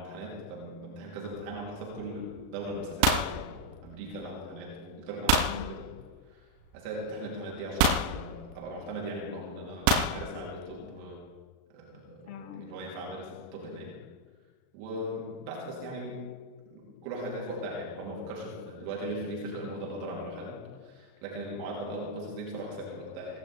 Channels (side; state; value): left; late; 37 ms